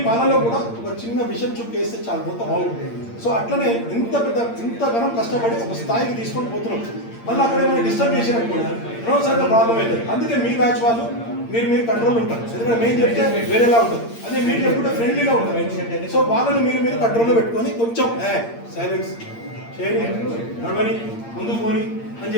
పాలలో కూడా ఒక చిన్న విషయం చూపేస్తే చాలా మొత్తం బాగుంటుంది. సో అట్లనే ఇంతగానం కష్టపడి ఒక స్థాయికి తీసుకొని పోతున్నాం. మళ్ళీ అక్కడ ఏమైనా డిస్టర్బ్ చేసినప్పుడు అనవసరంగా ప్రాబ్లం అవుతుంది. అందుకే మీ బ్యాచ్ వాళ్ళు మీరు కంట్రోల్ ఉంటారు. ఎందుకంటే మేము చెప్తే వేరేలా ఉంటుంది, అదే మీరు చెప్పుకుంటే ఫ్రెండ్లీగా ఉంటారు. సో వాళ్ళని మీరు కంట్రోల్లో పెట్టుకొని కొంచెం సైలెన్స్ చేయని, నడవని, ముందుకు పోని అని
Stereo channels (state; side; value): late; right; 8.7 ms